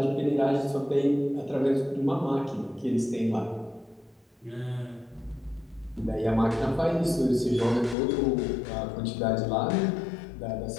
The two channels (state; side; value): drops out; right; at 8.0 s